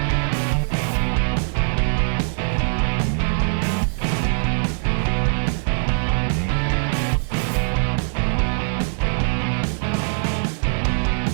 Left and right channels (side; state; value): left; silent; 64 dB below the other